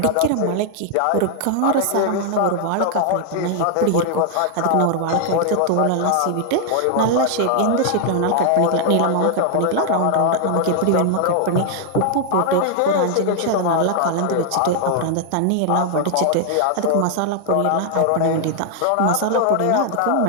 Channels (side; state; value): both; different; correlation 0.00